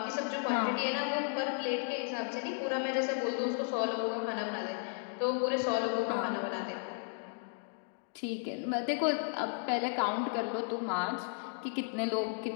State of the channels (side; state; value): right; silent; 55 dB below the other